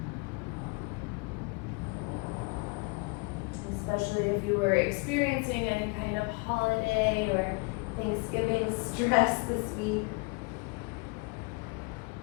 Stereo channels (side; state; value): right; quieter; 29.7 dB